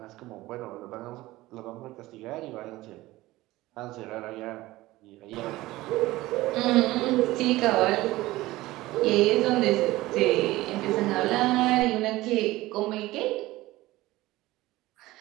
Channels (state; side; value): quieter; left; 18.0 dB